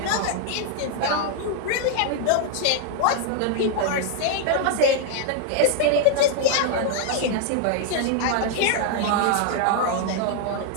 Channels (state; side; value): different; both; correlation 0.00